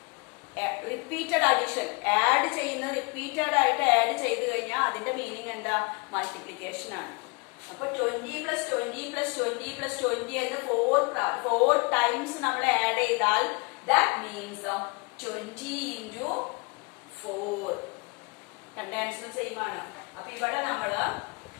Repeated addition add ചെയ്യുന്ന റിപ്പീറ്റഡ് ആയിട്ട് ആഡ് ചെയ്ത് കഴിഞ്ഞാൽ അതിന്റെ മീനിങ് എന്താ? മൾട്ടിപ്ലിക്കേഷൻ ആണ്. അപ്പൊ 20 + 20 + 20 + 20 എന്ന് 4 ടൈംസ് നമ്മൾ ആഡ് ചെയ്താൽ ദാറ്റ് മീൻസ് 20 × 4. രണ്ട് ആൻസറും സെയിം ആണ്. അപ്പൊ ഇവിടെ നമ്മൾ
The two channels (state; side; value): quieter; right; 30.6 dB